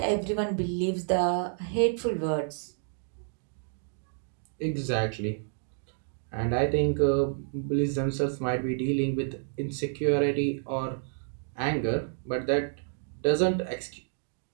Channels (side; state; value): left; silent; digital silence